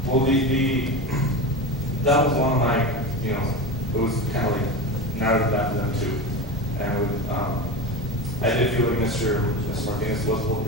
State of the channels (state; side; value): normal; both; correlation 0.24